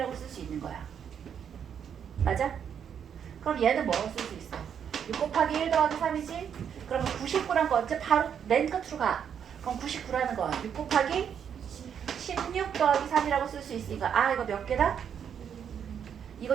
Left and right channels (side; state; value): left; quieter; 8.1 dB